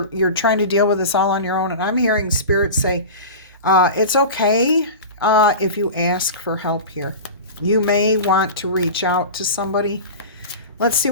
trying to deal with this all on your own. And I'm hearing Spirit say, it's okay if you ask for help here. You may want to reach out to somebody. Let's see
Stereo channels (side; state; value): both; inverted; correlation -0.30